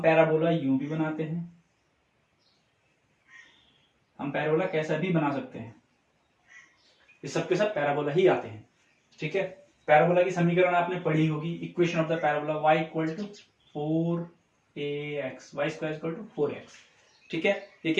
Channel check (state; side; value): identical; both; correlation 1.00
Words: पैराबोला यूं भी बनाते हैं, हम पैराबोला कैसा भी बना सकते हैं। ये सबके सब पैराबोला ही आते हैं। ठीक है। पैराबोला की समीकरण आपने पढ़ी होगी। Equation of the parabola y equal to 4ax, y square equal to 4x। ठीक है। ये